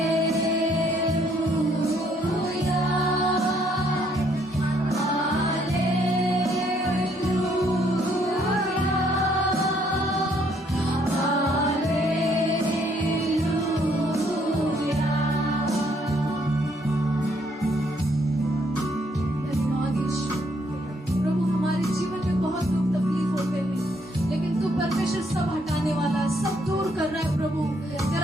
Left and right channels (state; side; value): normal; both; correlation 0.68